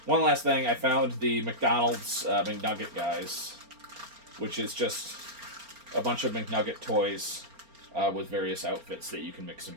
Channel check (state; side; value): late; left; 4.3 ms